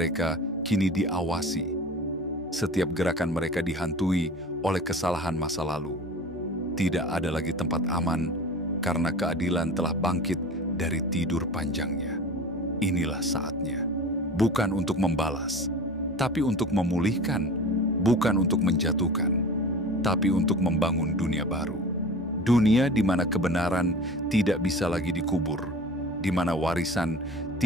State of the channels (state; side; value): normal; both; correlation 0.37